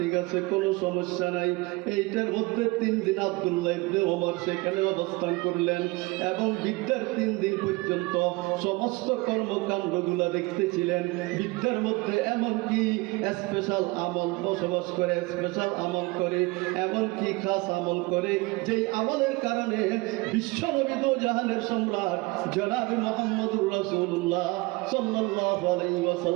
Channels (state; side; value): quieter; left; 23.7 dB